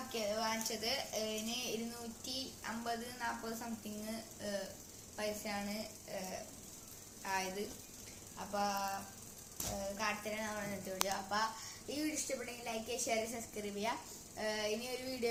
വാങ്ങിച്ചത്. ഇതിന് 250-40 സംതിങ് പൈസയാണ് ആയത്. അപ്പോൾ കാട്ടിത്തരാൻ നമ്മൾ ഇന്നത്തെ വീഡിയോ. അപ്പോൾ ഈ വീഡിയോ ഇഷ്ടപ്പെട്ടെങ്കിൽ ലൈക്ക് ചെയ്യുക, ഷെയർ, സബ്സ്ക്രൈബ് ചെയ്യുക. ഇനി ഒരു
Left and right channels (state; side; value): identical; both; correlation 1.00